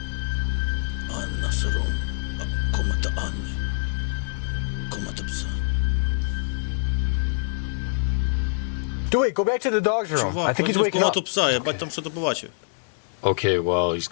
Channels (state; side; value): silent; right; digital silence